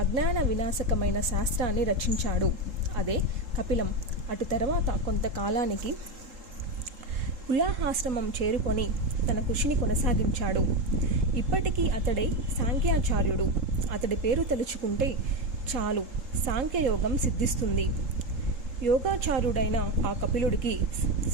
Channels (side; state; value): left; late; 3.8 ms